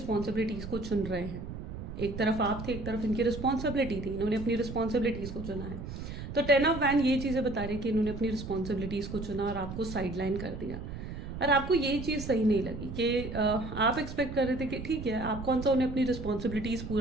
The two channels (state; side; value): noise; right; rumble, 8 dB below the sound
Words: को चुन रहे हैं। एक तरफ आप थे, एक तरफ इनकी रिस्पॉन्सिबिलिटी थी, इन्होंने अपनी रिस्पॉन्सिबिलिटीज़ को चुना है। तो 10 ऑफ वैंड ये चीज़ें बता रही है कि इन्होंने अपनी रिस्पॉन्सिबिलिटीज़ को चुना और आपको साइडलाइन कर दिया। और आपको ये चीज़ सही नहीं लगी कि आप एक्सपेक्ट कर रहे थे कि ठीक है, आप कौन सा उन्हें अपनी रिस्पॉन्सिबिलिटीज़